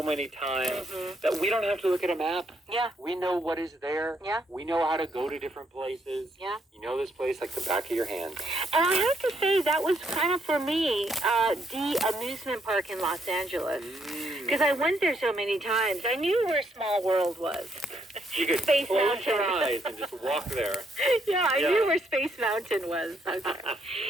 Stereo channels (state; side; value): normal; both; correlation 0.73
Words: many times that we don't have to look at a map. Yeah. We know what is there. Yeah. We know how to go to different places. Yeah. You know this place like the back of your hand. And I have to say, that was kind of, for me, the amusement park in Los Angeles. Because I went there so many times. I knew where Small World was. You could Space close Mountain. your eyes and just walk there. Yeah, I knew where Space Mountain was. Okay.